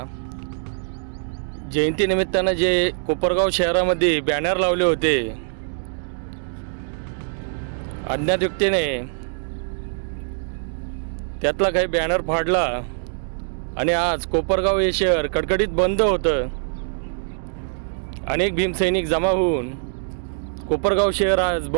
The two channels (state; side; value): silent; left; digital silence